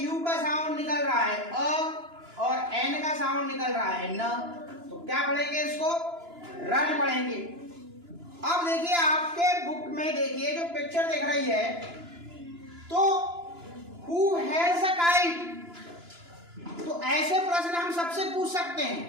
यू का साउंड निकल रहा है अ और एन का साउंड निकल रहा है न। तो क्या पढ़ेंगे इसको? रन पढ़ेंगे। अब देखिए आपके बुक में देखिए जो पिक्चर दिख रही है, तो हु हैज अ काइट। तो ऐसे प्रश्न हम सबसे पूछ सकते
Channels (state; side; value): late; left; 2.9 ms